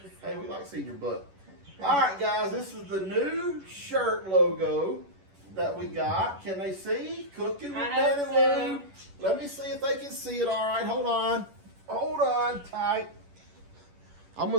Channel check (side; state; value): left; late; 11 ms